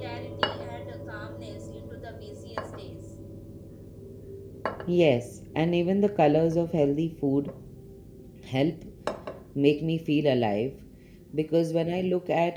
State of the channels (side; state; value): both; identical; correlation 1.00